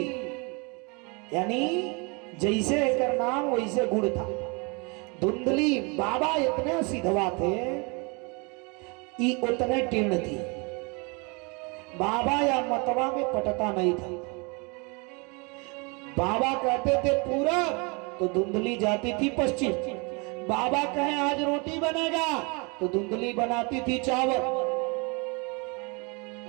यानी जैसे एकर नाम वैसे गुण था। धुंधली। बाबा इतने सिधवा थे, ये उतने टीर्ण थी। बाबा या मतवा में पटता नहीं था। बाबा कहते थे पूरब, तो धुंधली जाती थी पश्चिम। बाबा कहे आज रोटी बनेगा, तो धुंधली बनाती थी चावल।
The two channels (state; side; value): quieter; left; 30.6 dB